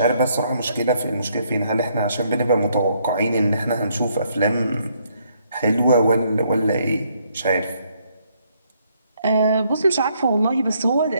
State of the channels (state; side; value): inverted; both; correlation -0.71